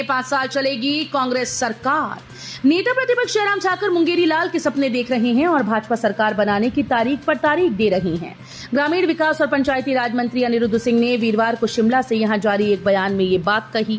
5 साल चलेगी कांग्रेस सरकार। नेता प्रतिपक्ष जयराम ठाकुर मुंगेरी लाल के सपने देख रहे हैं और भाजपा सरकार बनाने की तारीख पर तारीख दे रहे हैं। ग्रामीण विकास और पंचायती राज मंत्री अनिरुद्ध सिंह ने वीरवार को शिमला से यहां जारी एक बयान में ये बात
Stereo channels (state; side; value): identical; both; correlation 1.00